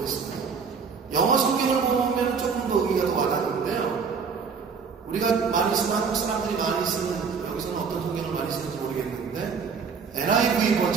했어요. 영어 성경을 보면 조금 더 의미가 더 와닿는데요. 우리가 많이 쓰는, 한국 사람들이 많이 쓰는, 여기서는 어떤 성경을 많이 쓰는지 모르겠는데, NIV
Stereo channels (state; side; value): quieter; left; 5.7 dB